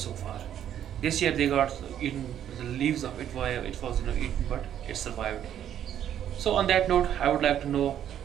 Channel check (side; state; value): left; quieter; 10.3 dB